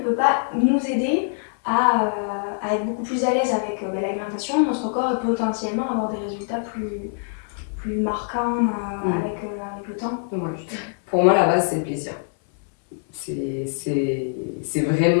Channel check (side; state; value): right; silent; 63 dB below the other